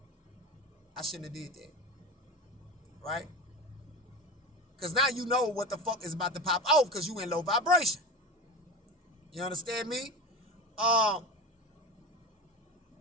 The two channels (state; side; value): normal; both; correlation 0.27